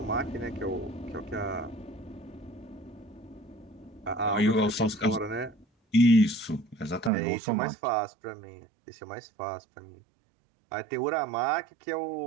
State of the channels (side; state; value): left; drops out; at 7.1 s